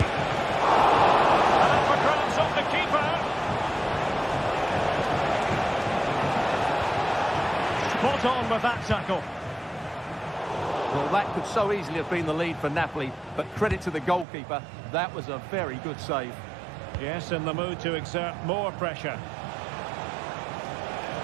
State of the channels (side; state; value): left; drops out; at 14.2 s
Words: Spot on with that tackle. Well, that could so easily have been the lead for Napoli, but credit to the goalkeeper, that was a very good save. Yes, in the mood to exert more pressure.